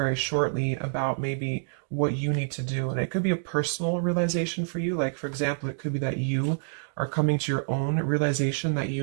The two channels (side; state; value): left; silent; digital silence